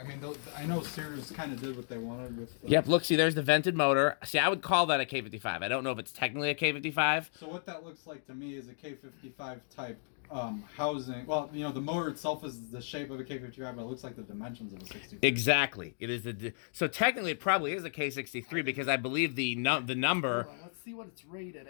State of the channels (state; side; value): silent; right; digital silence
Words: mean, I know Sears kind of did what they wanted with. Yep, look, see, there's the vented motor. See, I would call that a K55. I don't know if it's technically a K55. So what that looks like to me is a K55 type housing. Well, you know, the motor itself is the shape of a K55, but it looks like the dimensions of a 63. Exactly. It is so technically it probably is a K63 because I believe the number. Hold on, let's see what it's rated